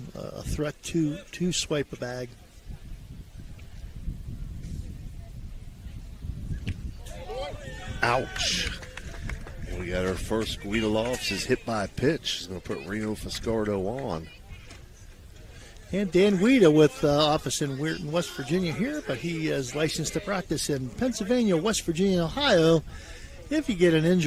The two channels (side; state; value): both; identical; correlation 1.00